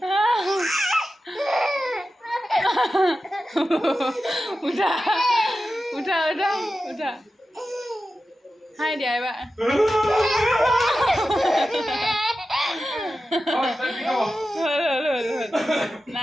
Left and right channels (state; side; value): normal; both; correlation 0.93